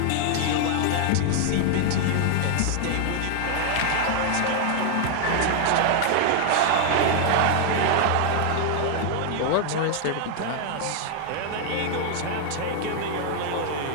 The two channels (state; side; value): different; both; correlation 0.00